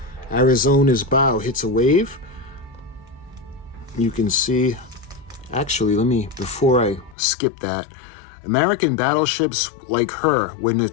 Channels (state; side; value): drops out; right; at 7.2 s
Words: Arizona's bow hits a wave. You can see, actually, before I skip that, American battleships like her were